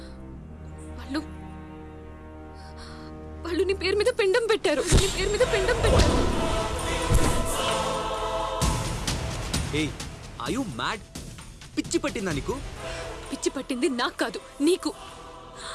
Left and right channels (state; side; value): identical; both; correlation 1.00